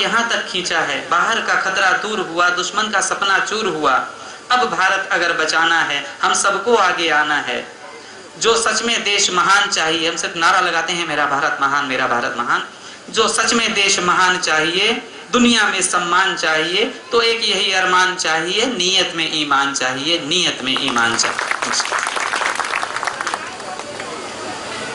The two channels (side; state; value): both; identical; correlation 1.00